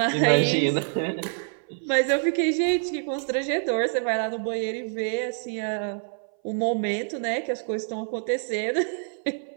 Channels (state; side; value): silent; left; 58 dB below the other